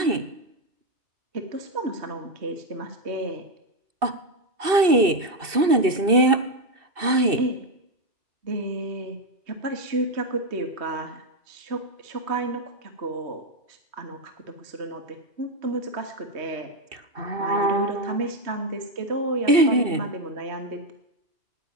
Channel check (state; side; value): late; left; 2.7 ms